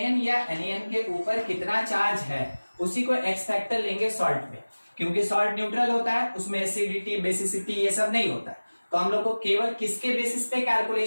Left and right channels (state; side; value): inverted; both; correlation -1.00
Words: या एनायन के ऊपर कितना चार्ज है उसी को एक्स फैक्टर लेंगे सॉल्ट में, क्योंकि सॉल्ट न्यूट्रल होता है, उसमें एसिडिटी बेसिसिटी ये सब नहीं होता है। तो हम लोग को केवल किसके बेसिस पे